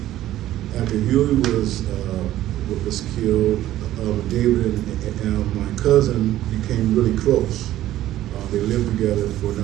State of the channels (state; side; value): quieter; left; 13.8 dB